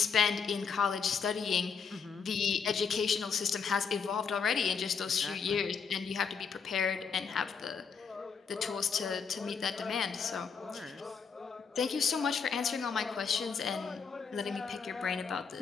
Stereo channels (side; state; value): right; quieter; 6.0 dB